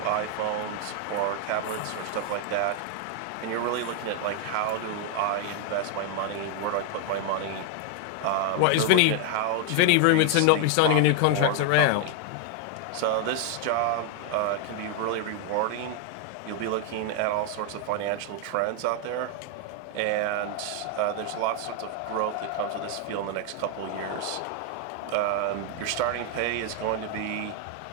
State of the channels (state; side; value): different; both; correlation 0.00